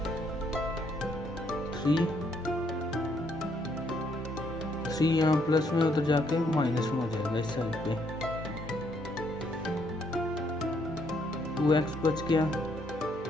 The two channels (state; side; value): normal; both; correlation 0.71